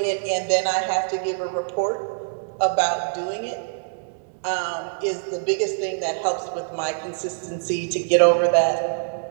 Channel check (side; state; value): left; silent; digital silence